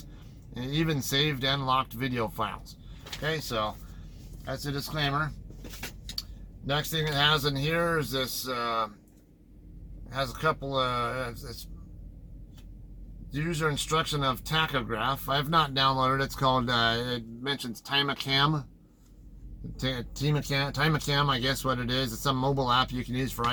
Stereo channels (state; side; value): identical; both; correlation 1.00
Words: and even saved and locked video files. Okay, so that's a disclaimer. Next thing it has in here is this, has a couple it's user instruction of tachograph. I have not downloaded it. It's called, it mentions Timacam. Timacam, I guess what it is. It's some mobile app you can use for